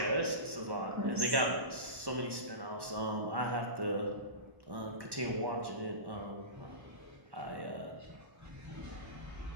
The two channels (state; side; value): late; left; 1.1 ms